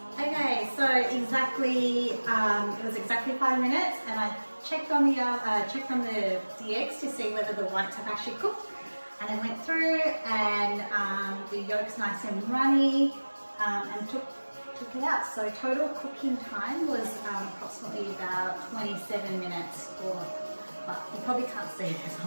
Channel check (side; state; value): both; inverted; correlation -1.00